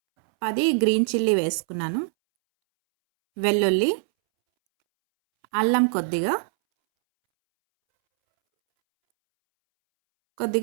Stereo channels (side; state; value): left; silent; 64 dB below the other